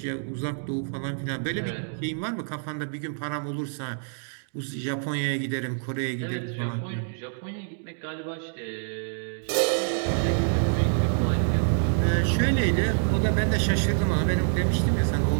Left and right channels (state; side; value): silent; left; digital silence